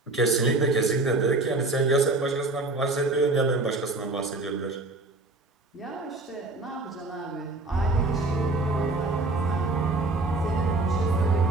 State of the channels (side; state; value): left; quieter; 3.0 dB